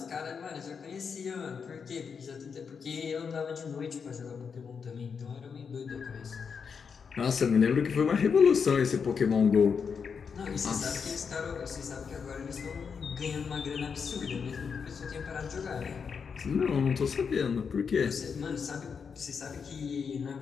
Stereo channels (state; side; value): quieter; right; 6.1 dB